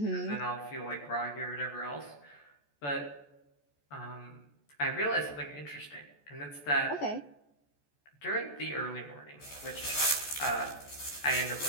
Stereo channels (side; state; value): right; late; 14 ms